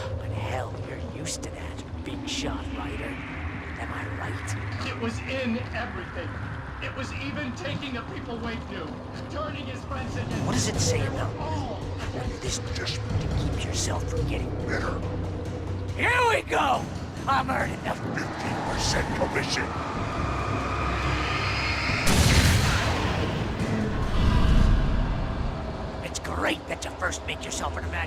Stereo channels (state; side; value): identical; both; correlation 1.00